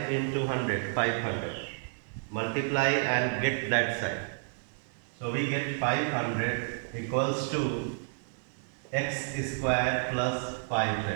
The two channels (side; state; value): left; silent; 57 dB below the other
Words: into 100, 500. Multiply and get that side. So we get 500 equals to x square plus